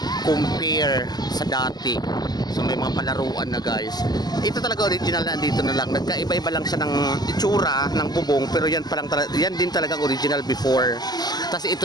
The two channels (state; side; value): late; right; 0.20 ms